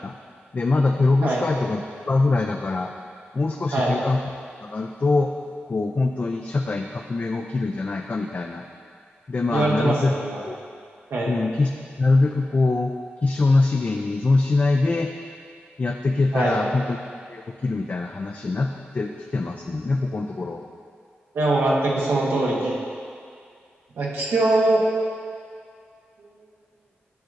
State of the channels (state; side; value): normal; both; correlation 0.91